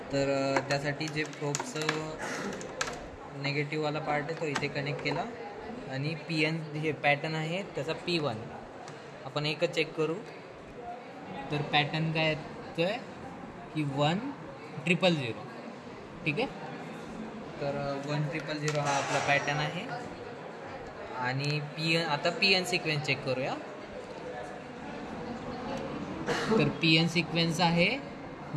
तर त्यासाठी जे प्रोबचं नेगेटिव्हवाला पार्ट आहे तो इथे कनेक्ट केला आणि PN हे पॅटर्न आहे त्याचा P1 आपण एकच चेक करू. तर पॅटर्न काय येतोय की 1000. ठीक आहे. तर 1000 हा आपला पॅटर्न आहे आणि आता PN सिक्वेन्स चेक करूया. तर PN सिक्वेन्स आहे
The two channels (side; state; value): both; identical; correlation 1.00